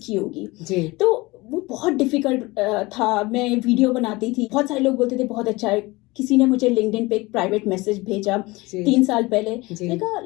होगी, जी। तो वो बहुत डिफिकल्ट था। मैं वीडियो बनाती थी, बहुत सारे लोग बोलते थे बहुत अच्छा है। किसी ने मुझे लिंक्डइन पे एक प्राइवेट मैसेज भेजा जी। 3 साल पहले, जी। मैंने कहा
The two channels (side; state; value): right; quieter; 22.2 dB